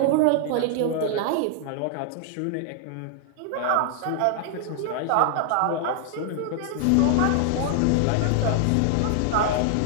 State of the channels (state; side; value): different; both; correlation 0.00